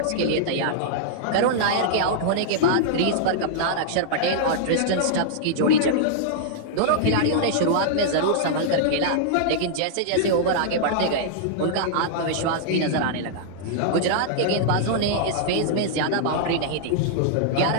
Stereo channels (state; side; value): different; both; correlation -0.01